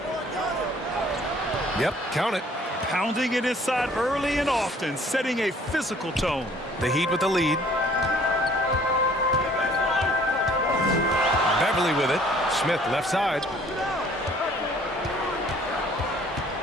Yep, count it. Pounding it inside early and often, setting a physical tone. The Heat with the lead. Beverly with it. Smith left side.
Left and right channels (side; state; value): both; normal; correlation 0.56